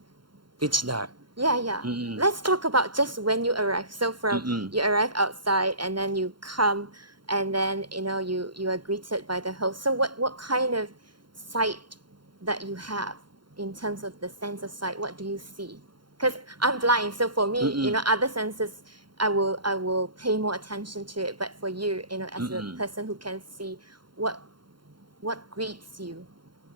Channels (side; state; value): left; late; 0.72 ms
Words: pitch dark. Yeah. Let's talk about just when you arrive. So from you arrive outside, and then you come, and then you are greeted by the host. So what kind of sight that you have in terms of the sense of sight? What do you see? Because I'm blind, so for me, other senses, I will pay more attention to it. But for you, as a person who can see, what greets you?